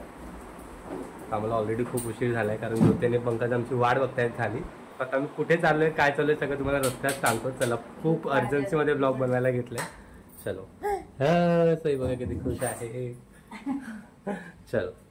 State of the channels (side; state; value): both; identical; correlation 1.00